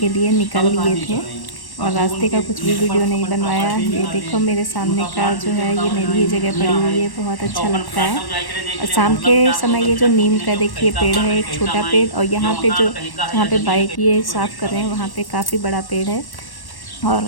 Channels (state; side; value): late; right; 1.1 ms